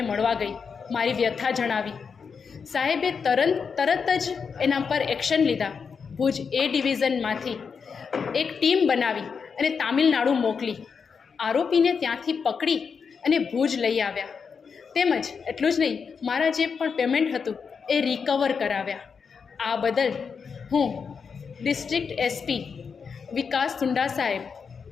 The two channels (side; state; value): right; quieter; 5.9 dB